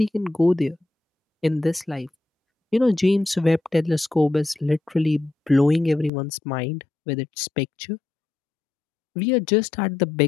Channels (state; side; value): drops out; right; at 6.1 s